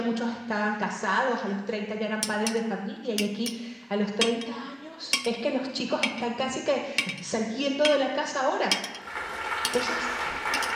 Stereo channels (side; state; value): both; identical; correlation 1.00